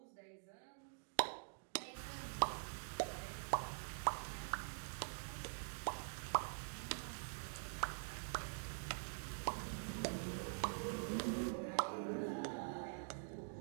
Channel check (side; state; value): left; silent; digital silence